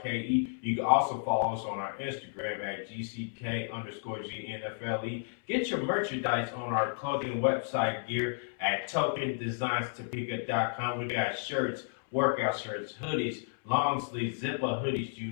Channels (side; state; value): right; silent; 56 dB below the other